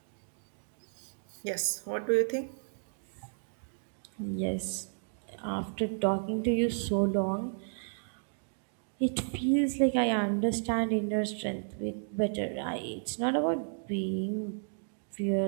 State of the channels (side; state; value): left; silent; digital silence